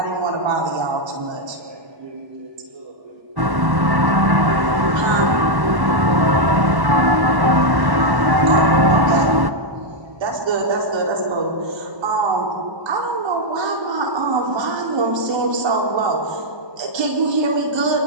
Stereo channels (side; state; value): left; late; 1.1 ms